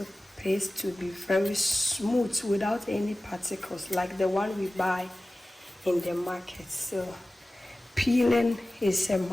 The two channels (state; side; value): normal; both; correlation 0.96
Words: paste to be very smooth without any particles like the one we buy in the market. So peeling is a